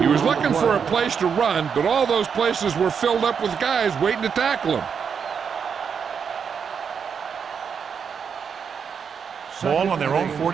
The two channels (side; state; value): left; quieter; 6.7 dB